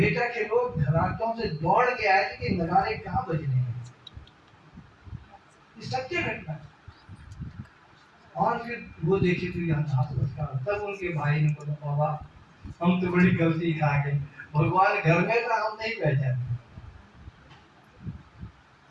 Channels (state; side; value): identical; both; correlation 1.00